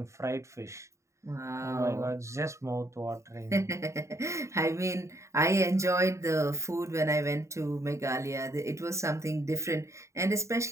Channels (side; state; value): left; late; 0.14 ms